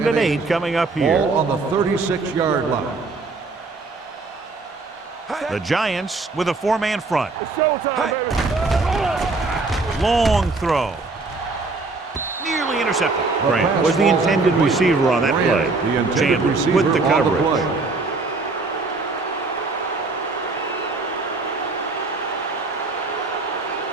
and 8 coming up here. Ball on the 36-yard line. The Giants with a 4-man front. It's showtime, baby. Long throw. Nearly intercepted. Grant was the intended receiver on that play. Chandler with the coverage.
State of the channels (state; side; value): quieter; left; 3.7 dB